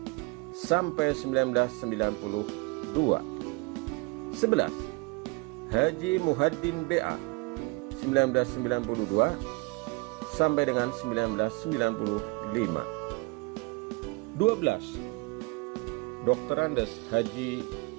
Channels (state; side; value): quieter; left; 26.5 dB